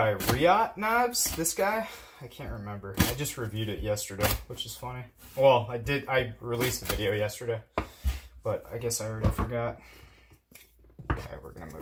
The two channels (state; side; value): identical; both; correlation 1.00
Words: Riot Knives, this guy. I can't remember. I just reviewed it yesterday, which is funny. Well, I released a video yesterday, but I guess I already forgot. Okay, we're gonna